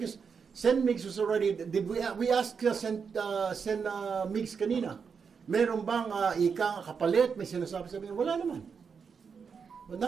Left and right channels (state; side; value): quieter; left; 6.0 dB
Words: Sen Mix was already, we asked Sen Mix kanina, meron bang ika kapalit, may sinasabi sabi, wala naman. But